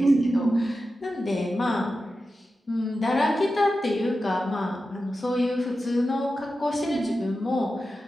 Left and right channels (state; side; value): normal; both; correlation 0.92